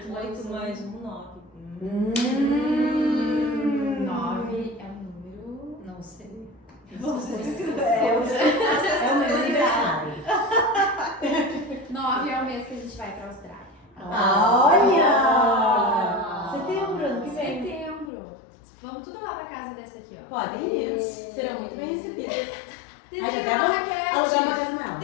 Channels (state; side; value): drops out; right; at 18.1 s